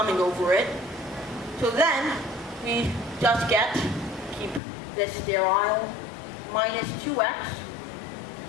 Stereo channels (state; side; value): drops out; right; at 4.6 s